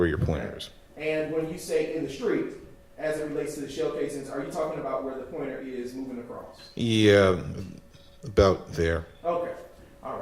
your pointer is. And when you say in the street, as it relates to the shell casings, are you talking about where the pointer is moving across? Yeah, about there. Okay. All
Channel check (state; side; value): identical; both; correlation 1.00